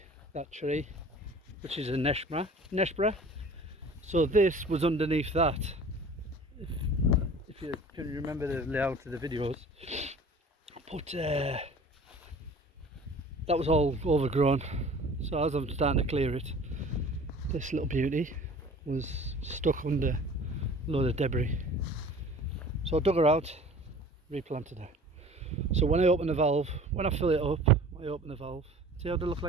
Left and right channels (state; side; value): normal; both; correlation 0.45